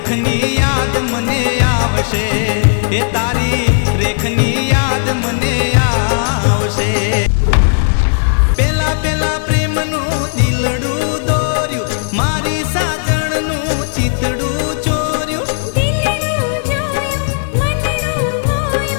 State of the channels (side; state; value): right; silent; digital silence